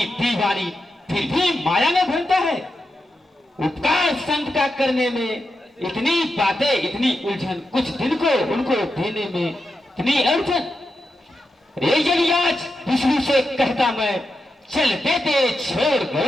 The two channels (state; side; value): normal; both; correlation 0.88